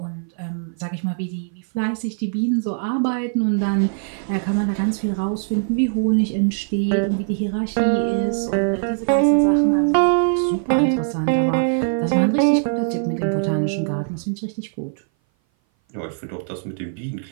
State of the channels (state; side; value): silent; left; 58 dB below the other